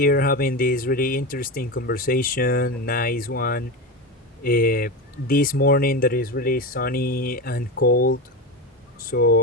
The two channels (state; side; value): normal; both; correlation 0.20